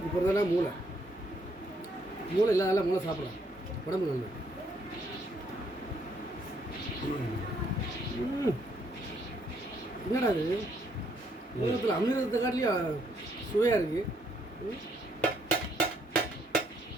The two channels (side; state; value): both; normal; correlation 0.71